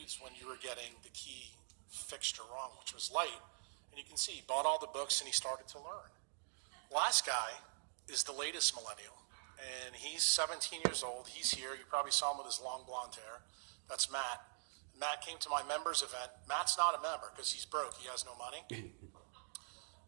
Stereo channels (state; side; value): silent; left; digital silence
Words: when you were getting the key fixture wrong, which was light. And you can see he bought all the books and he started to learn. Last guy is the latest millennial, and he's 17 years old. He's here. You probably saw him with his long blonde hair. That's Matt. And Matt came to my members event. Matt's not a member because he's broke. He has no money.